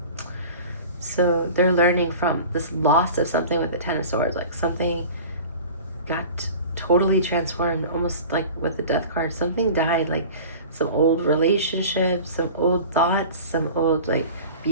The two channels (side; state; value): both; inverted; correlation -0.39